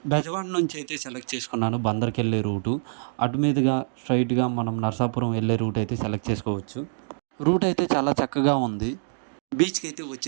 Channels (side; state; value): left; silent; digital silence